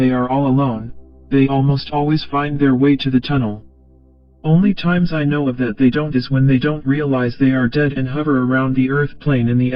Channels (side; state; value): both; identical; correlation 1.00